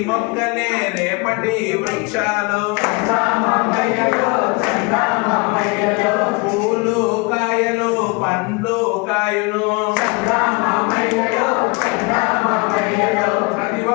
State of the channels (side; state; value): right; quieter; 29.0 dB